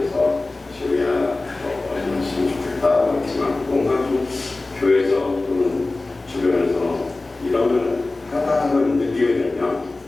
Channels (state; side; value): quieter; right; 3.2 dB